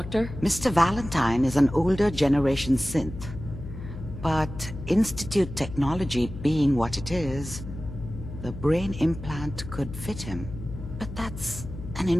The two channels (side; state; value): left; noise; hum, 11 dB below the sound